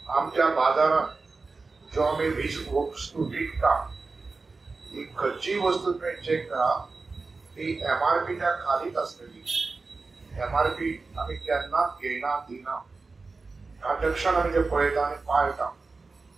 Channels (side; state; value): left; quieter; 4.0 dB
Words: आमच्या बाजारात जो आम्ही वस्तू विकता ही खंयचीय वस्तू तुम्ही चेक करा ती MRPच्या खालीच असतली. MRP आम्ही केन्नाच घेयना दिना. ट्रान्झॅक्शन आम्ही ते पळयता आणि पाळटा.